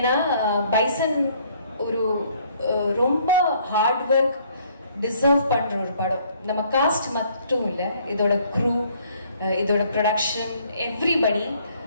பைசன் ஒரு ரொம்ப ஹார்ட் ஒர்க் டிசர்வ் பண்ற ஒரு படம். நம்ம காஸ்ட் மட்டும் இல்லை, இதோட க்ரூ, இதோட ப்ரொடக்ஷன், எவ்ரிபடி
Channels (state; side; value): inverted; both; correlation -0.62